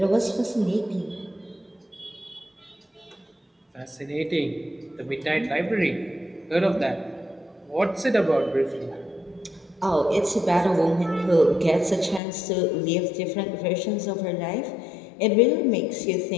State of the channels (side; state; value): right; drops out; at 12.2 s